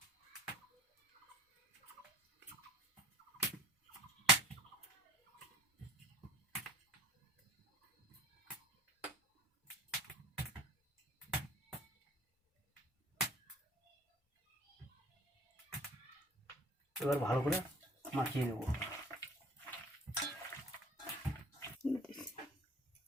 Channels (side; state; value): both; normal; correlation 0.46